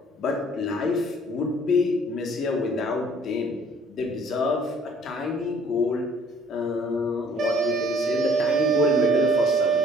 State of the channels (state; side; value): normal; both; correlation 0.57